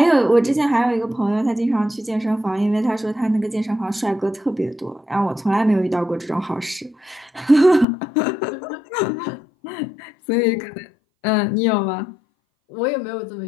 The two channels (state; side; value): drops out; right; at 7.9 s